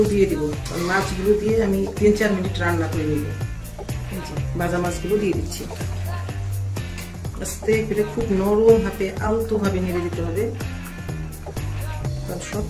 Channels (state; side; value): identical; both; correlation 1.00